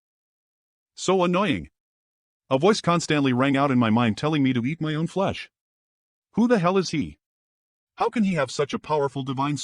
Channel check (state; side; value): identical; both; correlation 1.00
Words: So annoying. A voice constantly rang out in my mind telling me to eat my own flesh. Who the hell is he? How can he have such a powerful divine